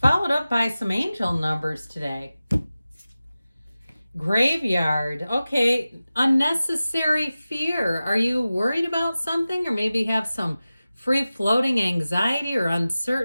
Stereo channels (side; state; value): both; inverted; correlation -0.96